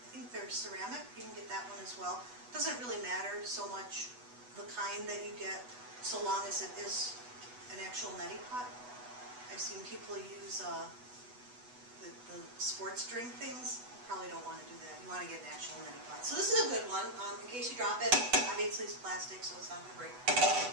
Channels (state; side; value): late; left; 8.1 ms